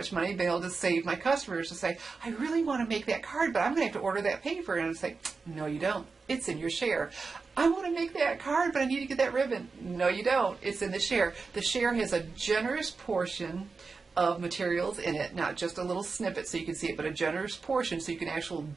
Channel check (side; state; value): left; quieter; 4.5 dB